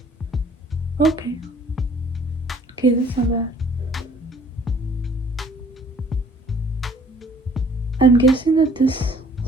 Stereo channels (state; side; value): normal; both; correlation 0.56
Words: Okay, that's not bad. I'm guessing that this